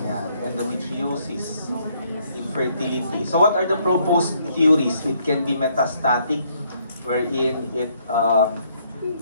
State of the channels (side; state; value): both; inverted; correlation -0.69